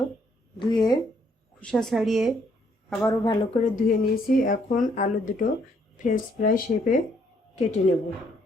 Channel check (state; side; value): normal; both; correlation 0.69